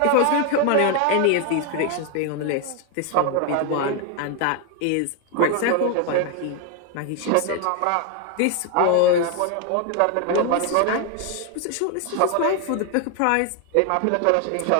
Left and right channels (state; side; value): different; both; correlation 0.01